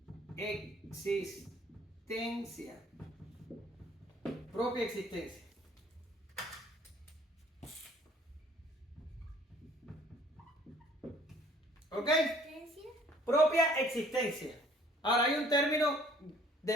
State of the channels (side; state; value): both; normal; correlation 0.56